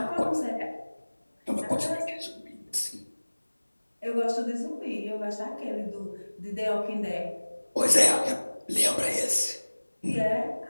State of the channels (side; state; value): both; inverted; correlation -1.00